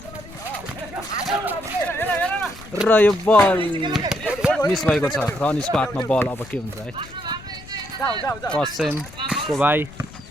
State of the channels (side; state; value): left; noise; rumble, 18 dB below the sound